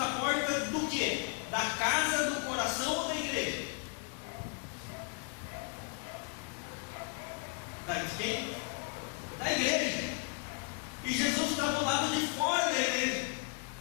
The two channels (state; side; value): quieter; right; 38.8 dB